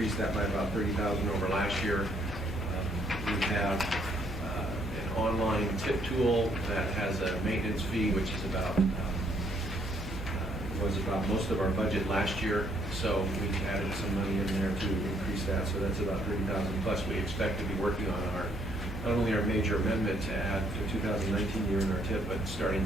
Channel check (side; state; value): both; normal; correlation 0.69